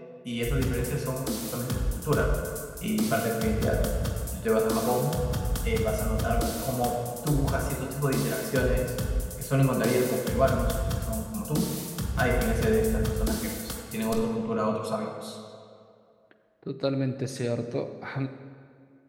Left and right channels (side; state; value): both; identical; correlation 1.00